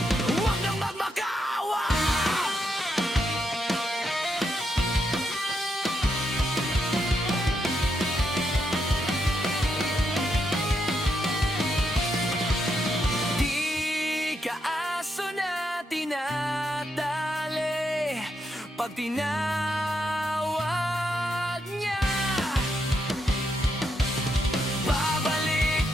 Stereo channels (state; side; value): normal; both; correlation 0.80